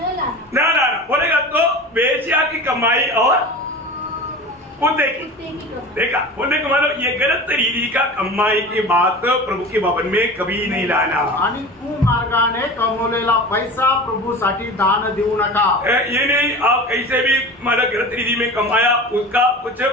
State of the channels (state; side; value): normal; both; correlation 0.34